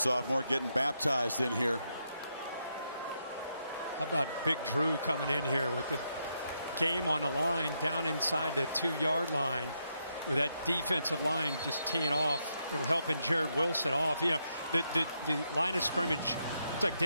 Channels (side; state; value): both; inverted; correlation -0.81